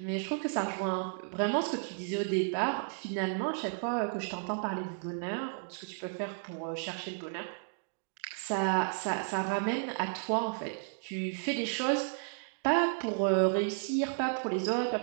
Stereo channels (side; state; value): left; silent; digital silence